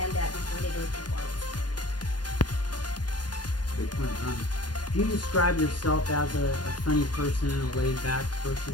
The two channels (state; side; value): late; right; 0.70 ms